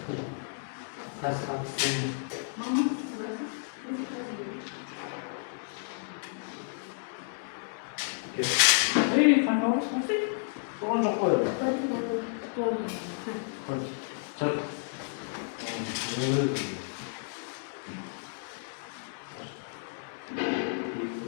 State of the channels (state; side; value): silent; right; digital silence